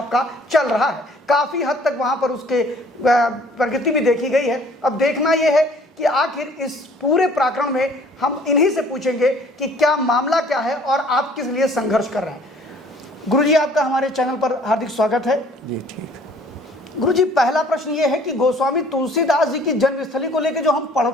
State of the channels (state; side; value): normal; both; correlation 0.55